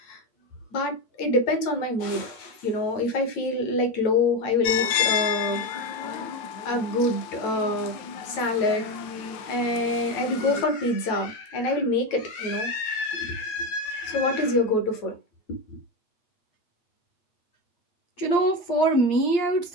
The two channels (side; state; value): right; late; 9.1 ms